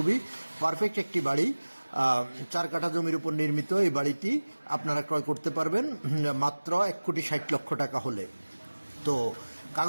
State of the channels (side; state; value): both; inverted; correlation -1.00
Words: পারফেক্ট একটি বাড়ি। 4 কাঠা জমির উপর নির্মিত এই বাড়িটি আপনারা ক্রয় করতে পারবেন মাত্র 1,60,00,000 টাকা হলে। তো